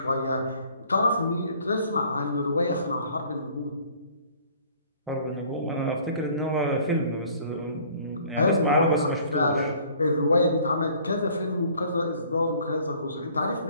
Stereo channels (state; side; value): inverted; both; correlation -0.54